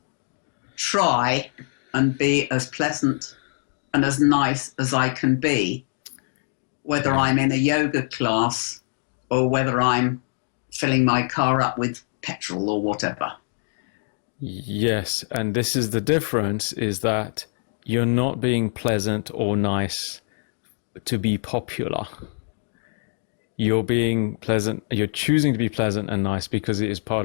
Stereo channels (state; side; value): silent; right; digital silence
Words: try and be as pleasant and as nice as I can be, whether I'm in a yoga class or whether I'm filling my car up with petrol or whatever. Yes, and this is the difference, is that you're not being pleasant or nice to be popular. You're being pleasant, you're choosing to be pleasant and nice because it is